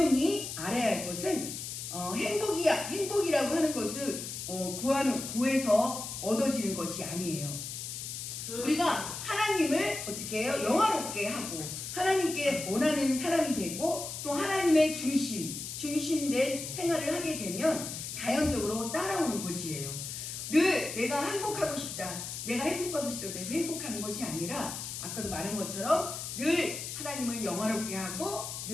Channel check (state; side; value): noise; left; hiss, 7 dB below the sound